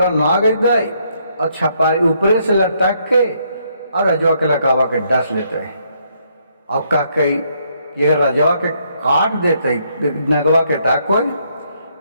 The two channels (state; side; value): inverted; both; correlation -0.72